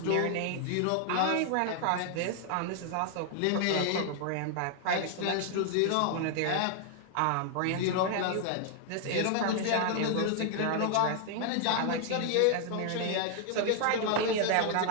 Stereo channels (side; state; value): both; different; correlation 0.00